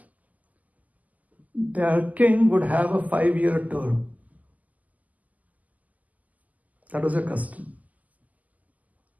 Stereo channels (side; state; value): left; late; 0.077 ms